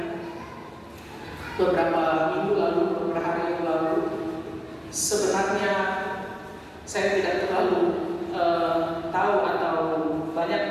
beberapa minggu lalu, beberapa hari yang lalu, sebenarnya saya tidak terlalu tahu atau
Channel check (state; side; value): identical; both; correlation 1.00